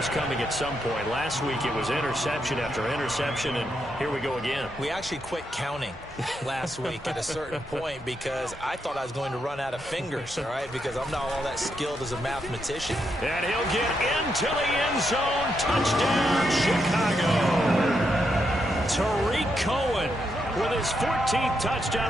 coming at some point. Last week it was interception after interception, and here we go again. We actually quit counting last week at a certain point because I thought I was going to run out of fingers, all right, because I'm not all that skilled as a mathematician. And he'll get into the end zone. Touchdown, Chicago. Tariq Cohen with his 14th touchdown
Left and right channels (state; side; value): normal; both; correlation 0.81